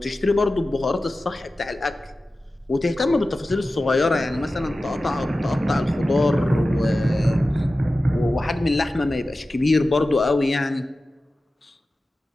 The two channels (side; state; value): both; normal; correlation 0.95